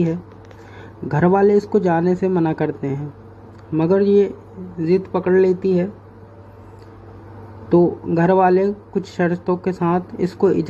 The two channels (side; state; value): both; identical; correlation 1.00